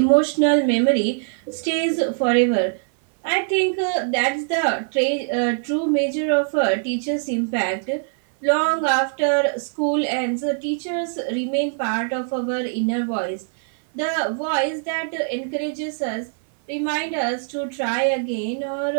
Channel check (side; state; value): left; silent; 59 dB below the other